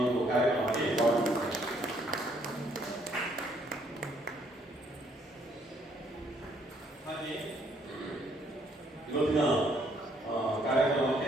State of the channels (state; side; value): normal; both; correlation 0.67